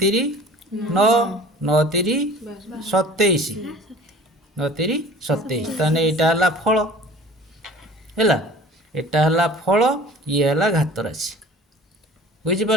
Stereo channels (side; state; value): both; normal; correlation 0.45